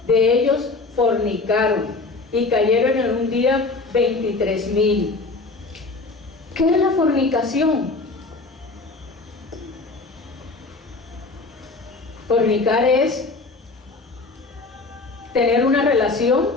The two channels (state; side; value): quieter; right; 3.6 dB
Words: de ellos fornicaron, y cayeron en un día 23,000. ¿Qué es la fornicación? Fornicar es tener una relación,